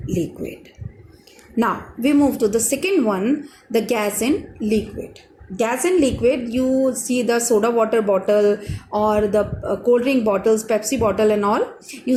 liquid. Now we move to the second one, the gas in liquid. Gas in liquid, you see the soda water bottle or the cold drink bottles, Pepsi bottle and all, you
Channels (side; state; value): both; identical; correlation 1.00